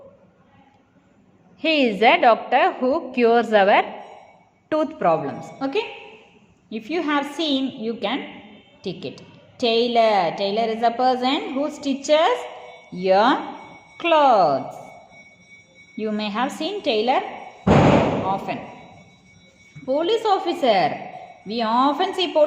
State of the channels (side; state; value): both; identical; correlation 1.00